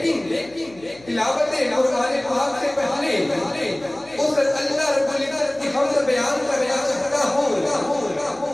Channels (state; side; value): noise; left; hum, 24 dB below the sound